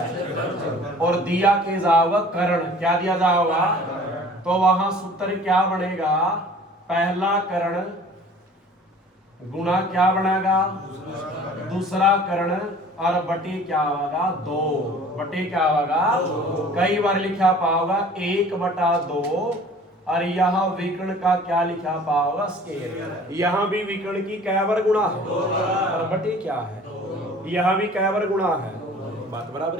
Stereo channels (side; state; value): both; normal; correlation 0.48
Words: और दिया के जाओगा कर्ण। क्या दिया जाओगा, तो वहां सूत्र क्या बनेगा, पहला कर्ण गुणा क्या बनेगा, दूसरा कर्ण और बटे क्या होगा 2, बटे क्या होगा कई बार लिखा पाओगा 1/2 और यहाँ विकर्ण का क्या लिखा पाओगा स्केयर। यहाँ भी विकर्ण की कै बार गुणा है और बटे क्या है यहाँ भी कै बार गुणा है, बात बराबर